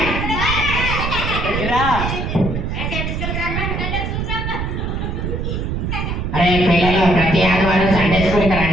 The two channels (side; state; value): right; noise; rumble, 2 dB below the sound